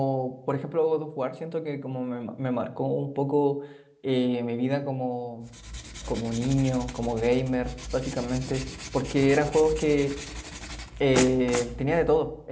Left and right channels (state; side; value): identical; both; correlation 1.00